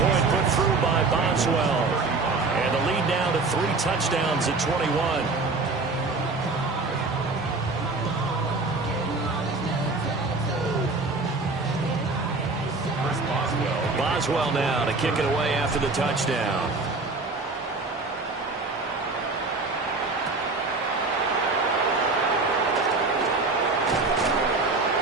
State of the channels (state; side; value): quieter; left; 3.7 dB